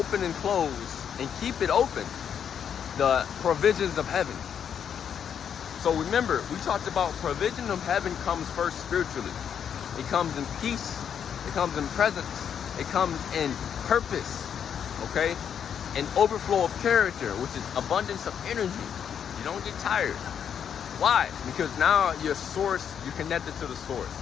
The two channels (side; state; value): right; quieter; 8.2 dB